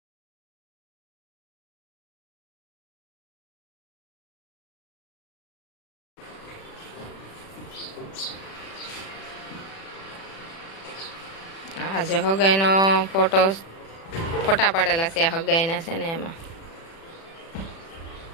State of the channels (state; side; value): late; right; 36 ms